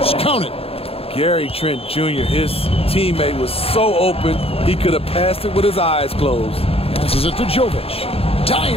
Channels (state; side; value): late; right; 0.28 ms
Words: Count it. Gary Trent Jr., his teammate, was so open, he could have passed it with his eyes closed. Passes it to Jovic.